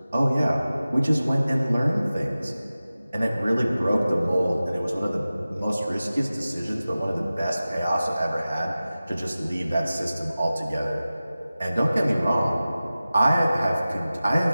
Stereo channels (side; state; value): both; inverted; correlation -0.96